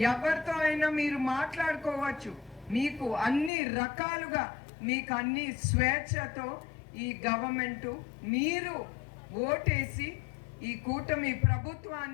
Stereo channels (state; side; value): drops out; right; at 3.5 s